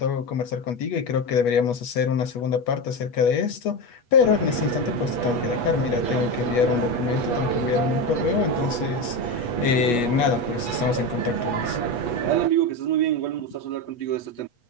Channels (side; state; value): right; late; 8.3 ms